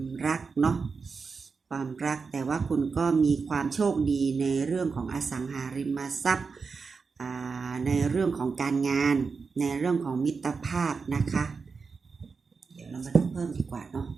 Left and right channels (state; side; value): quieter; left; 4.9 dB